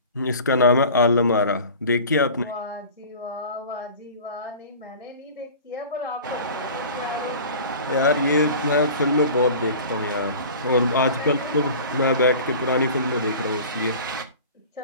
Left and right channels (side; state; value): both; inverted; correlation -0.40